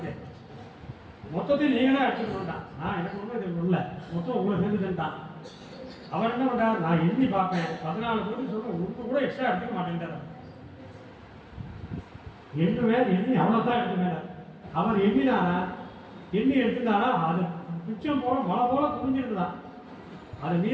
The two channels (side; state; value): both; identical; correlation 1.00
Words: மொத்தத்தையும் நீங்கள் தான் எடுத்துட்டு வந்துட்டான், நான் எனக்கு ஒன்றும் இது இல்லை, மொத்தம் உங்களை சேர்ந்துட்டான். அவர் என்ன பண்ணுறார், நான் எண்ணி பார்ப்பேன் 14 கோடி சொல்கிறேன், உங்களுக்கு கூட எக்ஸ்ட்ரா எடுத்துக்க மாட்டேன்ட்டார். எண்ணி அவ்வளோதான் எடுத்துமே. அவர் எண்ணினாரா, எண்ணி எடுத்துட்டாரா, அது மிச்சம் போல மழை போல குவிஞ்சிருந்தான். அதை